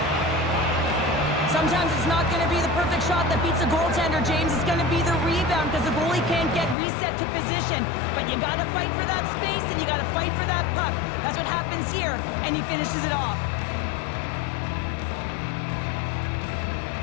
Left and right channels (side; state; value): right; drops out; at 6.8 s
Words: Sometimes it's not going to be the perfect shot that beats a goaltender, James. It's going to be the rebound because the goalie can't get reset to position. But you got to fight for that space and you got to fight for that puck. That's what happens here, and he finishes it off.